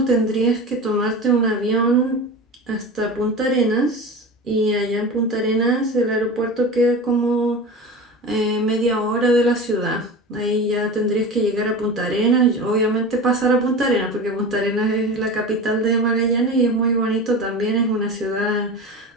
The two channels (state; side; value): normal; both; correlation 0.30